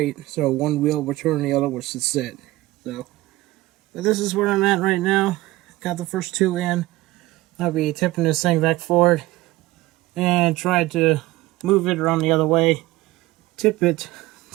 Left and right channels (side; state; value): left; quieter; 18.6 dB